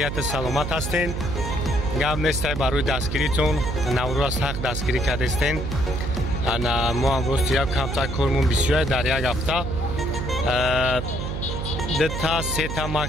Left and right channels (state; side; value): noise; right; hum, 4 dB below the sound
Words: саломат ҳастен. Гап нестай барои дастгиритон, наврӯз ҳақ дастгирӣ кардестен. Ана мо амрӯз як камтар кормон бисёр дар як ҳафта. Дата сета